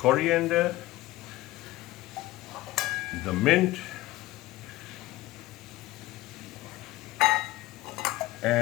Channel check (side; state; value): right; quieter; 17.6 dB